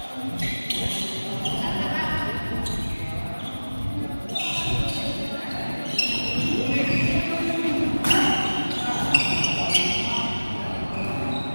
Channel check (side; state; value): both; inverted; correlation -1.00